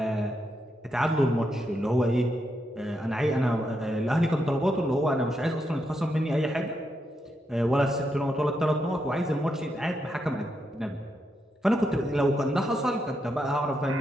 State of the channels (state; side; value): normal; both; correlation 0.82